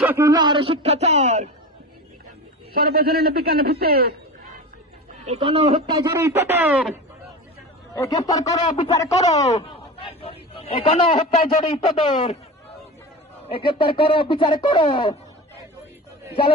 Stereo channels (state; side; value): normal; both; correlation 0.29